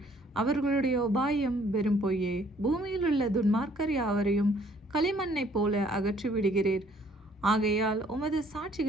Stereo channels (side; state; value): both; normal; correlation 0.61